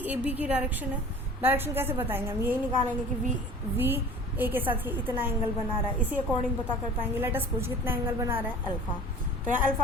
ए बी की डायरेक्शन है. डायरेक्शन कैसे बताएंगे, हम यही निकालेंगे कि वी ए के साथ ये इतना एंगल बना रहा है, इसी अकॉर्डिंग पता कर पाएंगे. लेट अस पूछ कितना एंगल बना रहा है, अल्फा. तो यहाँ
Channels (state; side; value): normal; both; correlation 0.43